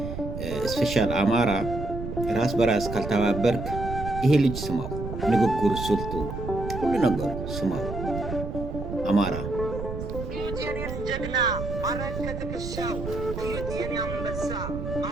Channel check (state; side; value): noise; right; rumble, 7 dB below the sound